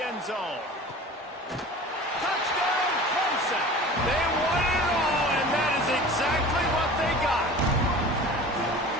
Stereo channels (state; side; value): normal; both; correlation 0.39